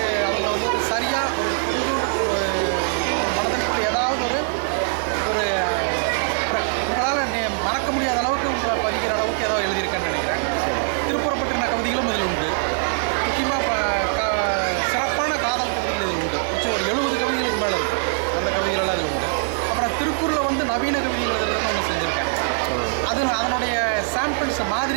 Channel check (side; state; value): left; silent; 64 dB below the other